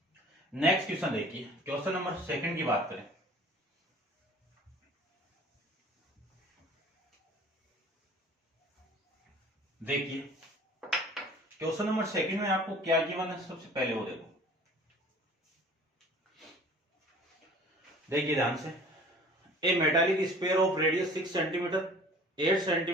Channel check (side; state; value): both; normal; correlation 0.47